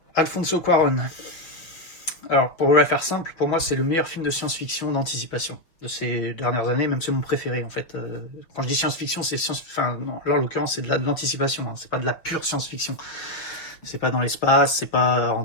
Alfonso Cuarón. Alors pour vous la faire simple, pour moi c'est le meilleur film de science-fiction d'anticipation de ces dernières années, même c'est mon préféré en fait. Quand je dis science-fiction, c'est enfin non, là en l'occurrence c'est de l'anticipation, hein. C'est pas de la pure science-fiction. C'est pas dans l'espace, c'est pas en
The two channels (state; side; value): late; right; 6.2 ms